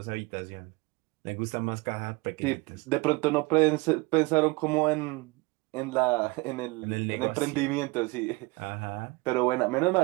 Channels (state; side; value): quieter; left; 25.1 dB